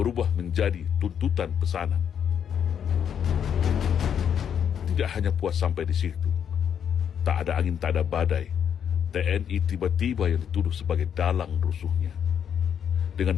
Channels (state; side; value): quieter; right; 8.3 dB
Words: menjadi tuntutan pesanan. Tidak hanya puas sampai di situ, tak ada angin tak ada badai, TNI tiba-tiba yang dituduh sebagai dalang rusuhnya.